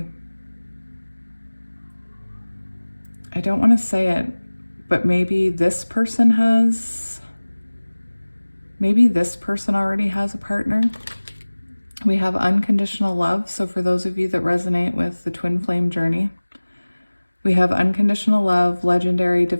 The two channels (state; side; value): inverted; both; correlation -1.00